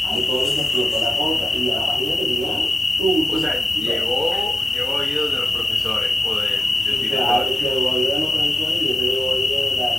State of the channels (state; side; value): normal; both; correlation 0.90